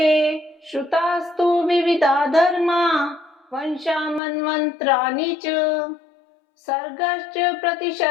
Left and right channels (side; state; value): right; drops out; at 4.2 s